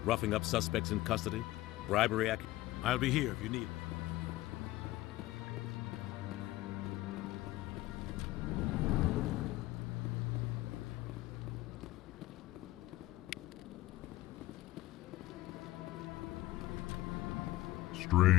Roughing up suspects in custody? Bribery? I'll be here if you need me.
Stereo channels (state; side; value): quieter; right; 17.4 dB